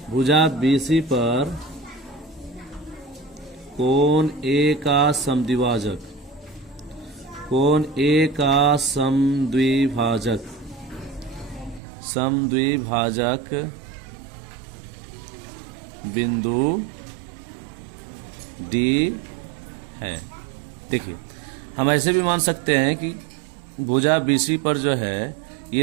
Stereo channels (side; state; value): left; drops out; at 11.8 s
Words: भुजा BC पर कोण A का समद्विभाजक, कोण A का समद्विभाजक बिंदु D है। देखिए, हम ऐसे भी मान सकते हैं कि भुजा BC पर जो है